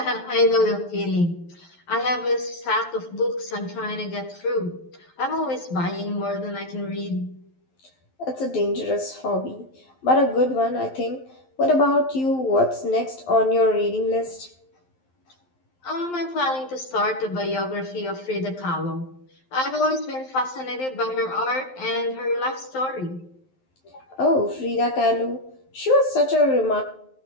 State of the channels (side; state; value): right; late; 12 ms